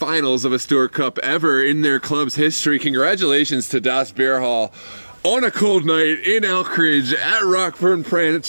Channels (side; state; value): both; inverted; correlation -1.00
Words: of a Stewart Cup ever in their club's history. Congratulations to Das Bierhalle. on a cold night in Elkridge at Rockburn